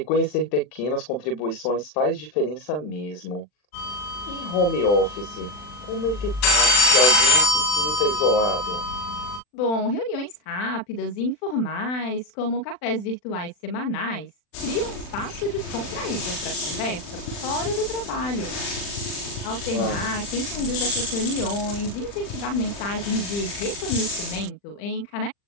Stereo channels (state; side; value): late; right; 40 ms